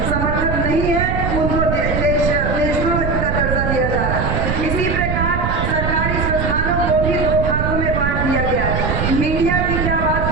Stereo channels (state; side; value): noise; right; rumble, 1 dB below the sound